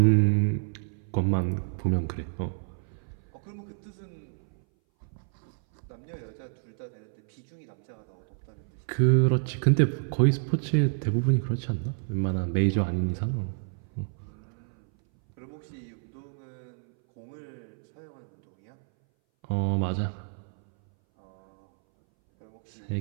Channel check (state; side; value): silent; left; 58 dB below the other